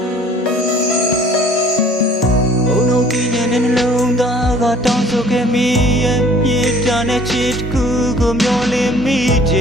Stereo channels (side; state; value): both; normal; correlation 0.52